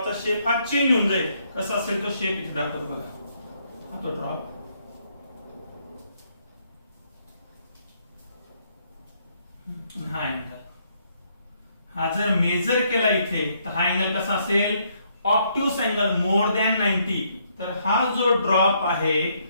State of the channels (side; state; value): both; inverted; correlation -0.71